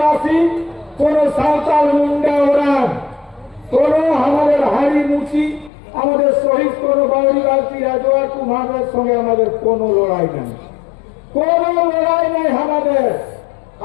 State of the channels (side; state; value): right; drops out; at 5.7 s